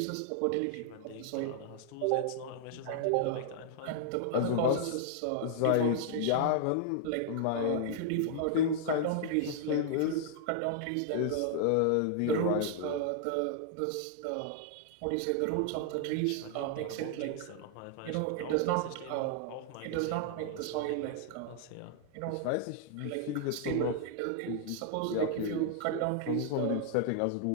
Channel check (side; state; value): both; different; correlation 0.00